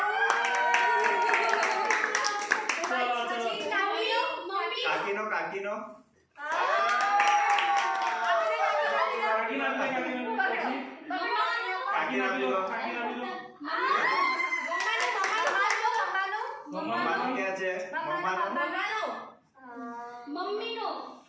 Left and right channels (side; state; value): both; identical; correlation 1.00